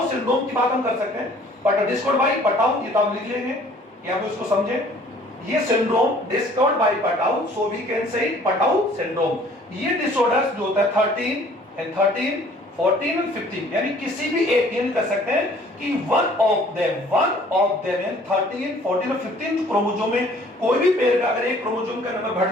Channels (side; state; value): both; normal; correlation 0.55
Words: सिंड्रोम की बात हम कर सकते हैं, बट डिस्कवर्ड बाय पटाउ, ये तो आप लिख लेंगे या आप इसको समझें। ये syndrome discovered by Patau, so we can say Patau syndrome. ये डिसऑर्डर्स जो होता है 13, 14 और 15, यानी किसी भी एक ये कर सकते हैं कि वन ऑफ देम यानी 13, 14 और 15 जो क्रोमोसोम में कोई भी पेयर का अगर एक क्रोमोसोम का नंबर